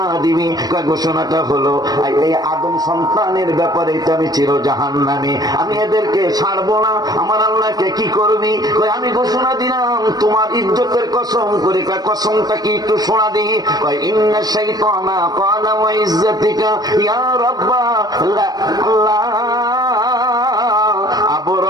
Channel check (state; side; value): late; left; 0.19 ms